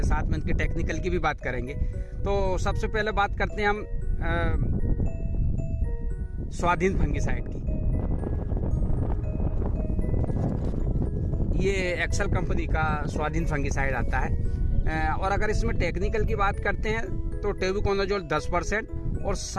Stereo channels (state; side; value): identical; both; correlation 1.00